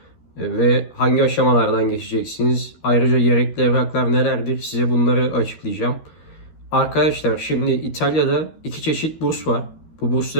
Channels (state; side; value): late; right; 13 ms